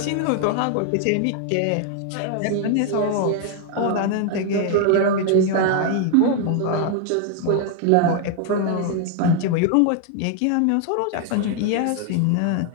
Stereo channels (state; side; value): different; both; correlation 0.00